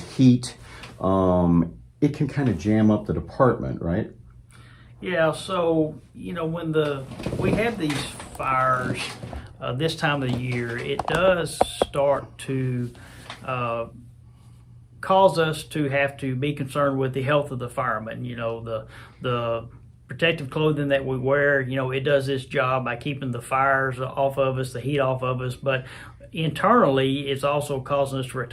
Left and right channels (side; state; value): both; identical; correlation 1.00